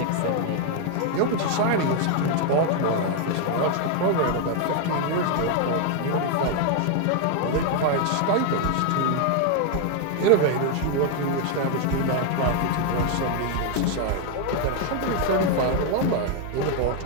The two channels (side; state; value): both; different; correlation 0.01